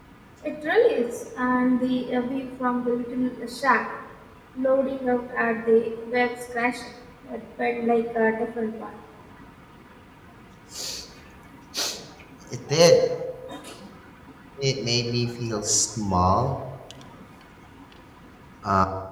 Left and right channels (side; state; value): both; identical; correlation 1.00